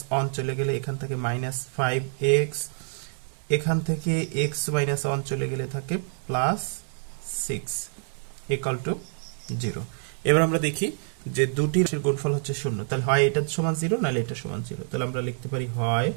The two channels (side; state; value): left; silent; 60 dB below the other